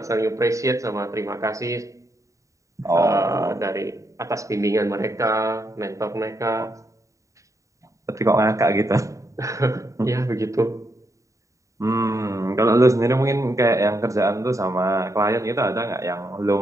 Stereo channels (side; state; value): left; late; 0.16 ms